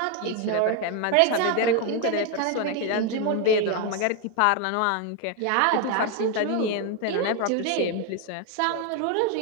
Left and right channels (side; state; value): both; different; correlation 0.01